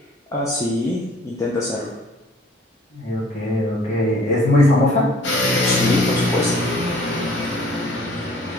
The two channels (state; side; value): normal; both; correlation 0.54